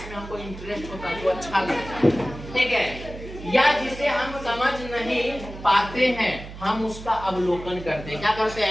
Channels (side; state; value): right; noise; hum, 13 dB below the sound